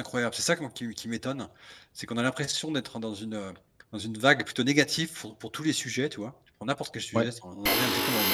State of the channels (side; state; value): both; identical; correlation 1.00